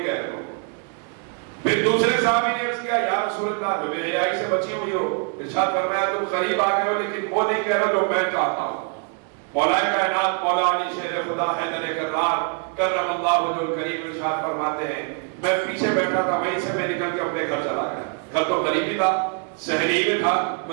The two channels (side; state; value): left; quieter; 39.9 dB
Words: کہہ رہے ہو. پھر دوسرے صحابی نے عرض کیا یا رسول اللہ جو بے حیائی سے بچی ہوئی ہو, ارشاد فرمایا تم قریب آ گئے ہو لیکن وہ نہیں کہہ رہے جو میں چاہتا ہوں. مولا کائنات مولا علی شیر خدا حیدر کرار کرم اللہ وجہ الکریم ارشاد فرماتے ہیں میں پیچھے بیٹھا تھا, وہیں سے میں نکل کے اپنے گھر چلا گیا. گھر تو قریبی تھا, شہری میں تھا,